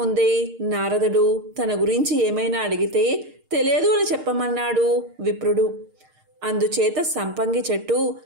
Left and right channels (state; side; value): late; left; 6.5 ms